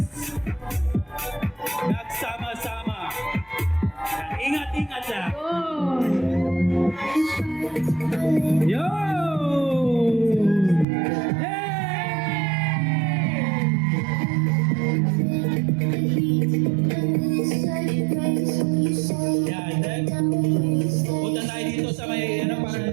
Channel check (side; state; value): left; drops out; at 10.9 s